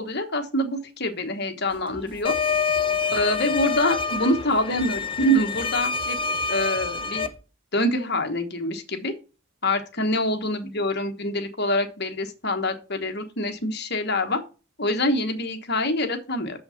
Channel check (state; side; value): normal; both; correlation -0.02